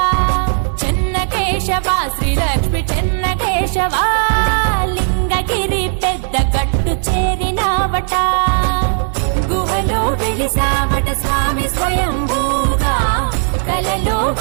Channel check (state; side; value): silent; left; digital silence